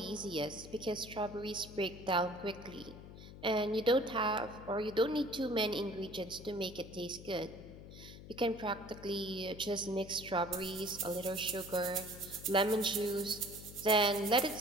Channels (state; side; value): noise; left; hum, 15 dB below the sound